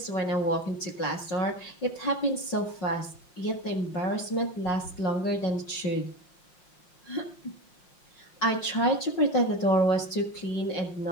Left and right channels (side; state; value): right; late; 5.4 ms